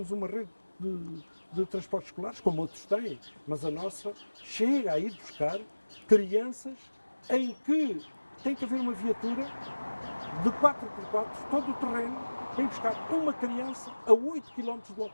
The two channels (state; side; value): inverted; both; correlation -1.00